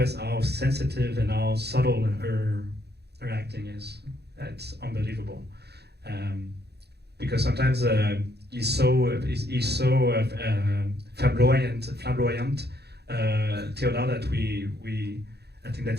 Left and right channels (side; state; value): left; late; 0.48 ms